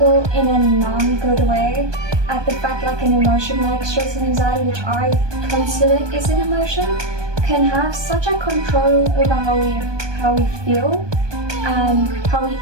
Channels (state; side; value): late; left; 1.2 ms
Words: in a non-good way at the fact an emotion like stress and anxiety, which I consider is an emotion, can have such a control over how we feel and how we